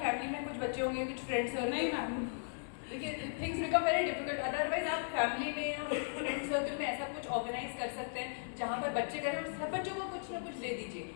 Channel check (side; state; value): right; silent; digital silence